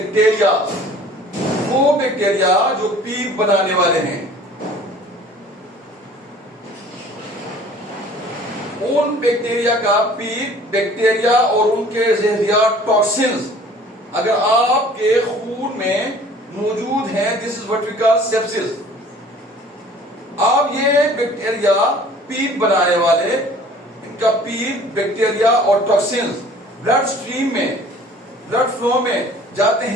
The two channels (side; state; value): both; normal; correlation 0.50